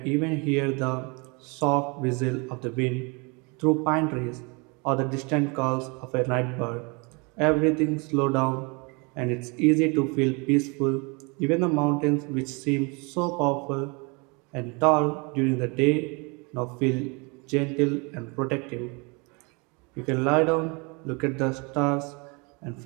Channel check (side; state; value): left; quieter; 30.1 dB